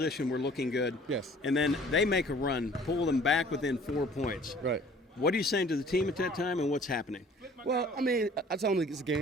we're looking good. Yes. And then they make a run, pull them back within 4 points. Right. What are you saying to the team at that time, and what's happening? Well, I tell them it's a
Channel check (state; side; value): normal; both; correlation 0.52